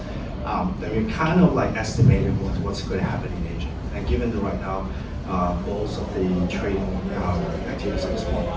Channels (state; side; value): identical; both; correlation 1.00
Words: Then we kind of like estimated what's going to happen in Asia. And given that right now, most of the trading activities